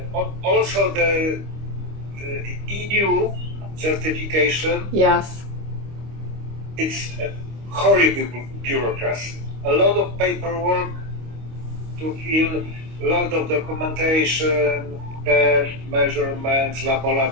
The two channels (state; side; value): late; left; 25 ms